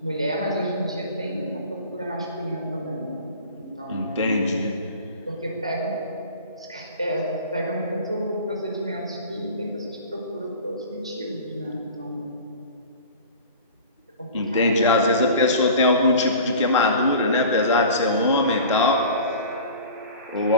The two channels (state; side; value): inverted; both; correlation -0.39